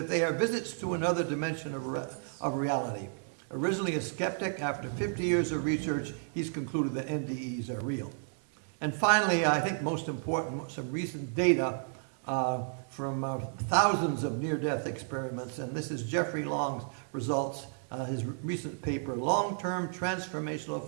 they are visits to another dimension of reality. Originally a skeptic, after 50 years of research, he's concluded that NDEs are real. And finally, I think most important, some recent data from thousands of near-death experiments, and this is Jeffrey Long's results, his recent paper, Long-Term Transformational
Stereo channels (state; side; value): silent; left; digital silence